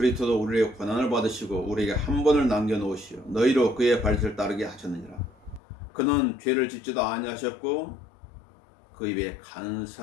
우리의 고난을 받으시고 우리에게 한 번을 남겨놓으시오 너희로 그의 발짓을 따르게 하셨느니라. 그는 죄를 짓지도 아니하셨고 그 입에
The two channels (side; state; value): right; drops out; at 5.6 s